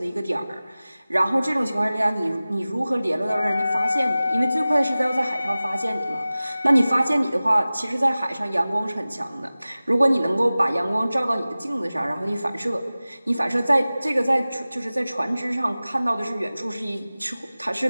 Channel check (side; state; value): both; inverted; correlation -0.97